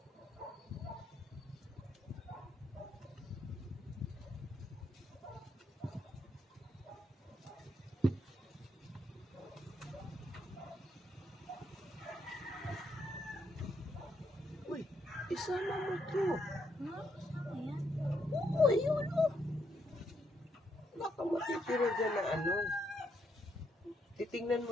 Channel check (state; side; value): normal; both; correlation 0.77